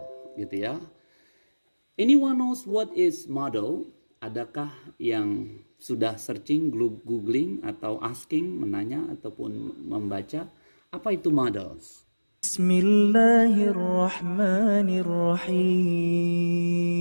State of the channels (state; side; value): inverted; both; correlation -1.00